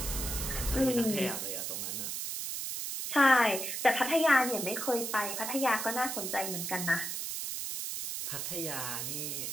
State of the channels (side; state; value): right; noise; hiss, 4 dB below the sound